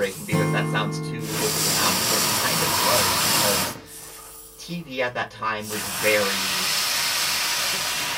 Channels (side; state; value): both; identical; correlation 1.00